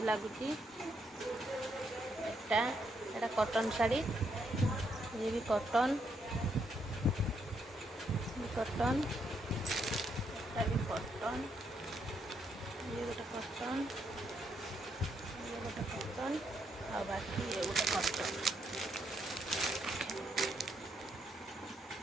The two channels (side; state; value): both; normal; correlation 0.76